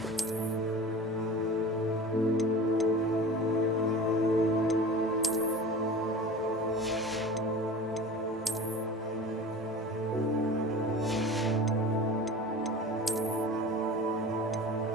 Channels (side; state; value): both; normal; correlation 0.36